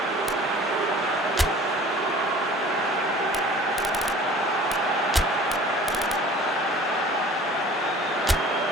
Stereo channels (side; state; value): both; normal; correlation 0.46